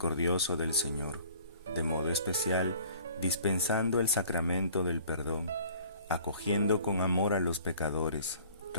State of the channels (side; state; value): both; inverted; correlation -0.52